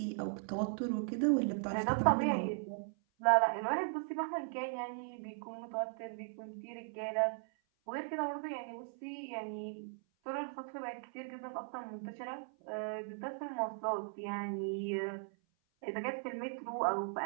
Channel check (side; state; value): left; silent; 52 dB below the other